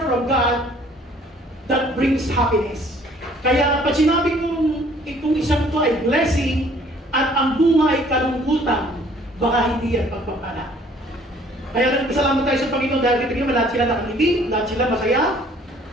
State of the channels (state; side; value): normal; both; correlation 0.57